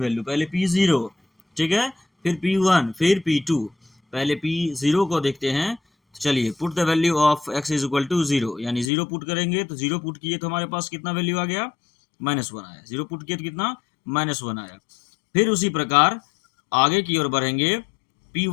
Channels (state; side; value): drops out; right; at 8.9 s